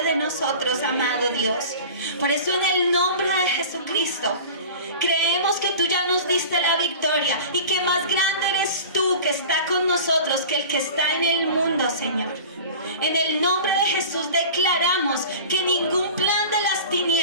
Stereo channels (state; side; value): inverted; both; correlation -0.37